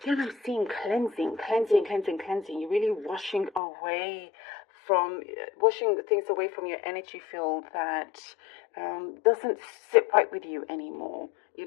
I'm seeing cleansing. You're really washing things away from your energy field that doesn't sit right with you anymore. You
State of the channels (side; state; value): right; drops out; at 3.6 s